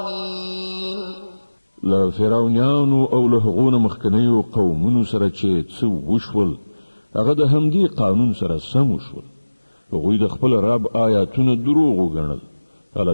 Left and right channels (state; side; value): inverted; both; correlation -1.00